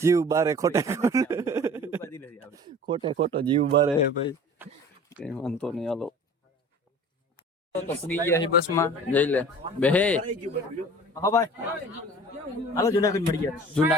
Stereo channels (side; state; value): both; normal; correlation 0.43